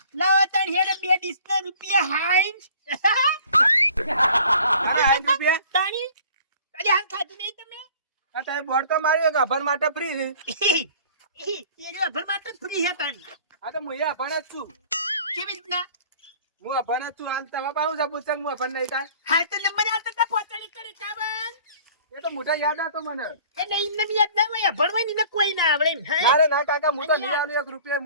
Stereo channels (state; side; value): inverted; both; correlation -0.49